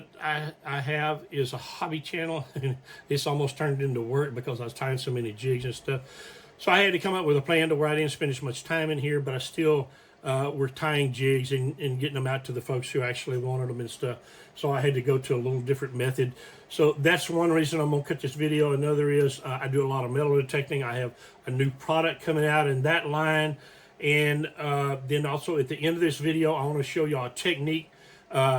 I have is a hobby channel. It's almost turned into work because I was tying so many jigs and stuff. So I had to come up with a plan to where I didn't spend as much time in here, but I still were tying jigs and getting them out to the folks who actually wanted them and stuff. So I had to go to a little different method. So that's one reason I'm going to cut this video. Another is I do a lot of metal detecting. I have a new product coming out in that line. And then also at the end of this video, I want to show y'all a technique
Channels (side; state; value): both; identical; correlation 1.00